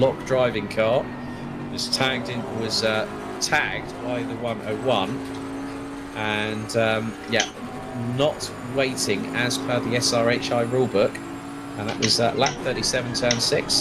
driving car, was tagged by the 101, and yeah, not waiting as per the SRHI rulebook, and that was lap 37, turn 6.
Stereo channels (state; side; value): identical; both; correlation 1.00